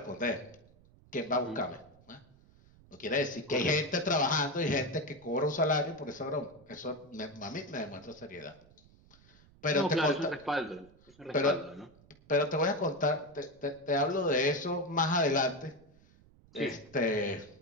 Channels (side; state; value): right; noise; rumble, 27 dB below the sound